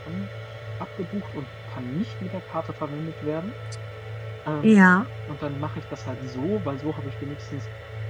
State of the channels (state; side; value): identical; both; correlation 1.00